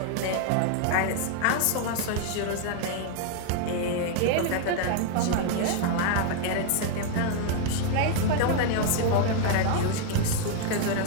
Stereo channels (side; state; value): both; different; correlation 0.00